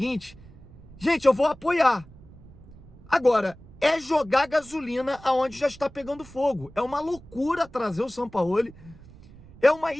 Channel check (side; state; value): right; noise; rumble, 21 dB below the sound